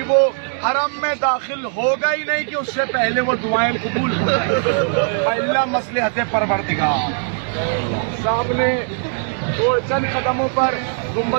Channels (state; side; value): silent; left; 64 dB below the other